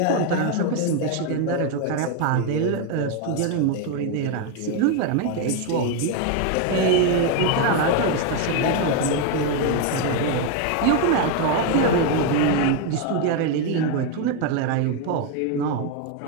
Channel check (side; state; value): both; different; correlation 0.01